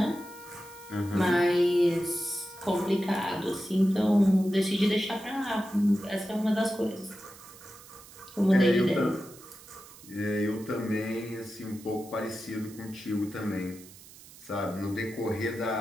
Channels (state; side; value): noise; right; hiss, 20 dB below the sound